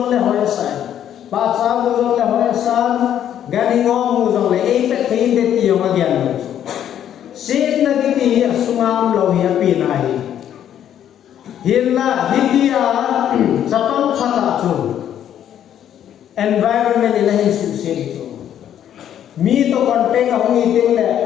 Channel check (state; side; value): quieter; right; 10.3 dB